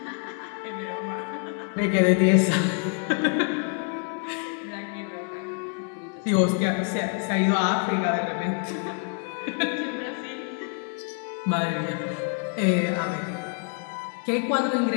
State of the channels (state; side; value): quieter; right; 37.7 dB